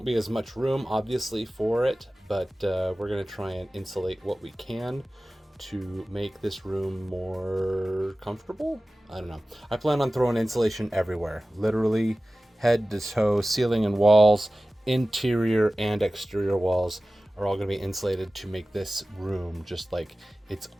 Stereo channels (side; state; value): both; normal; correlation 0.96